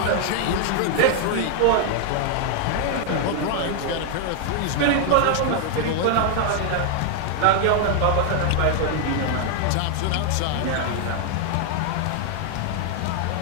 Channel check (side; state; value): both; different; correlation 0.00